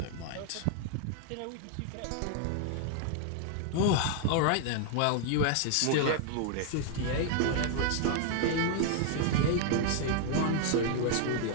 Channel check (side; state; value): both; different; correlation 0.00